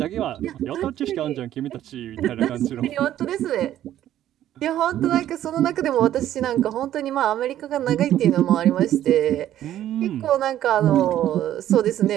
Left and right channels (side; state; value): left; quieter; 12.2 dB